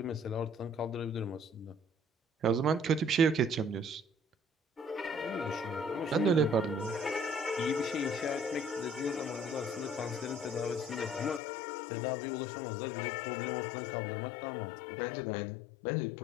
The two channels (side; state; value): right; drops out; at 11.4 s